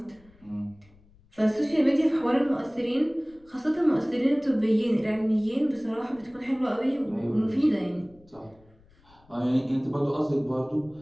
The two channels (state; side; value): noise; left; rumble, 29 dB below the sound